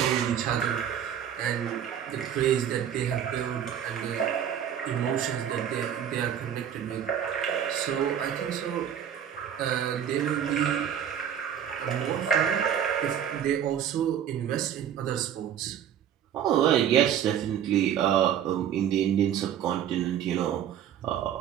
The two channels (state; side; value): quieter; left; 9.4 dB